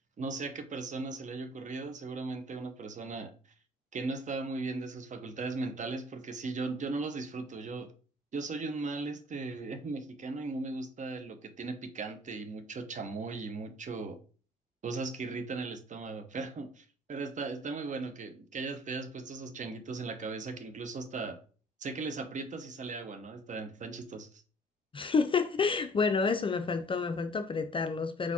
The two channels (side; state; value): both; normal; correlation 0.54